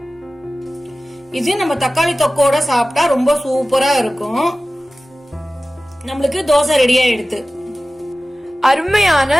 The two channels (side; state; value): both; normal; correlation 0.96